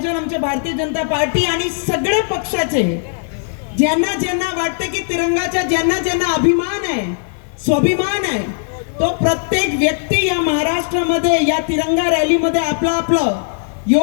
आमच्या भारतीय जनता पार्टी आणि सगळे पक्षाचे ज्यांना ज्यांना वाटतं की तिरंगाचा ज्यांना ज्यांना अभिमान आहे, स्वाभिमान आहे, तो प्रत्येक व्यक्ती या महाराष्ट्रामध्ये या तिरंगा रॅलीमध्ये आपलं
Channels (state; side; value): silent; right; 68 dB below the other